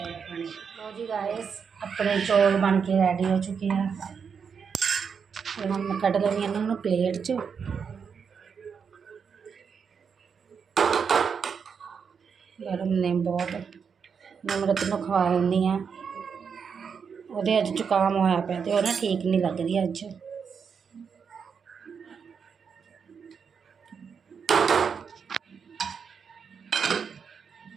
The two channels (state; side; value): quieter; left; 6.4 dB